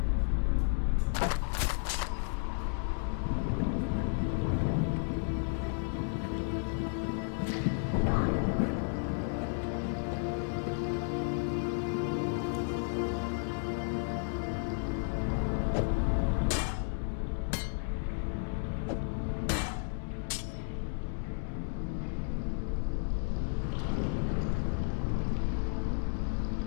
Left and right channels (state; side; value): silent; right; 56 dB below the other